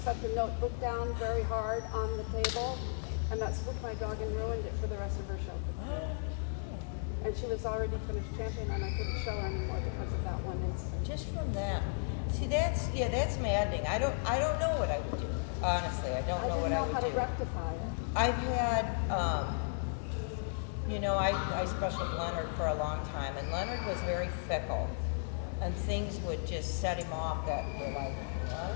the notebook down very hard on the table, and that spooked my dog and ruined it for the rest of her show. And she was already finished champion, and I couldn't show her anymore because of that one incident. Just from that. See, that's maddening. I don't know what I would do. Honestly, I don't know what I would do. I didn't know how to rectify it. I've had, you know, I specialed Leonard for a long time, and Leonard was very fickle, and things would just set him off that were like, what?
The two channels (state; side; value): silent; right; digital silence